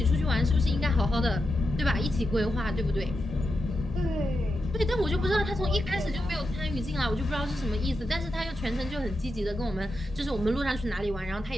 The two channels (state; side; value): normal; both; correlation 0.88